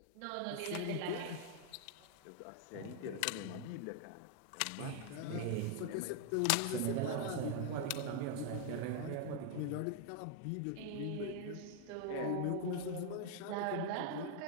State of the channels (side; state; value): both; different; correlation 0.00